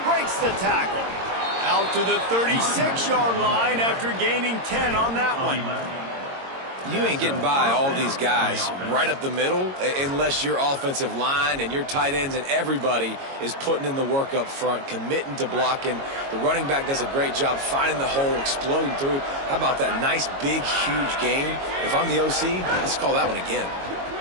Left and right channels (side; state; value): left; late; 22 ms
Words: Breaks the tackle. Out to the 36-yard line after gaining 10 on that one. You ain't getting by all these guys right up the middle unless your offensive line and your tight ends and everybody is putting in the work up front, committing to blocking. The running back does a great job finding the hole, exploding through. How about that nice, big, huge game? If I'm the OC, let's call that one again.